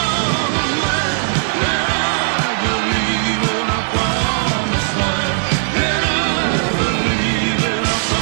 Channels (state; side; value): silent; left; 62 dB below the other